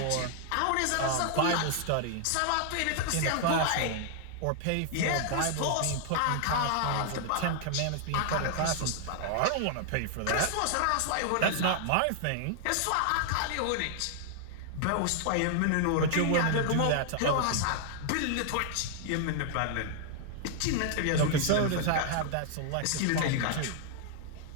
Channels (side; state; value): both; different; correlation 0.00